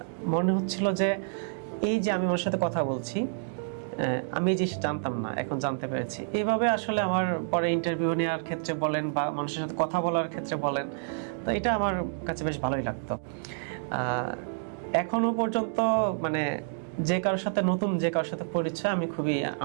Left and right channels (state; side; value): silent; left; digital silence